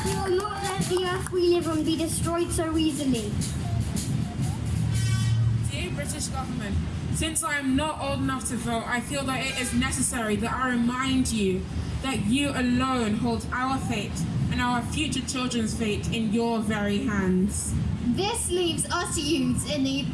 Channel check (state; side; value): identical; both; correlation 1.00